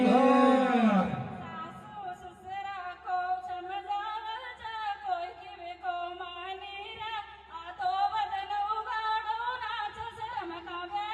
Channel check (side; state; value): both; identical; correlation 1.00